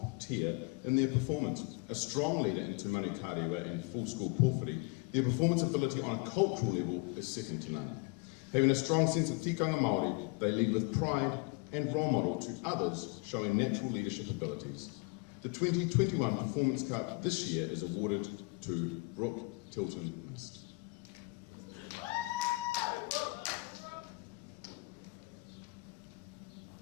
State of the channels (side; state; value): right; quieter; 27.8 dB